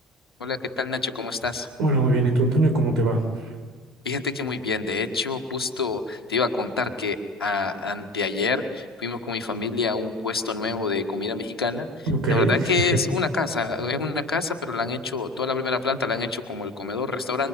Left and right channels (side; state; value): both; normal; correlation 0.36